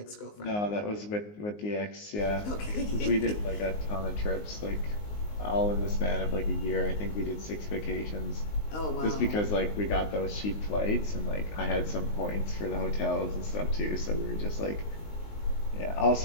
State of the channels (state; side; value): late; right; 19 ms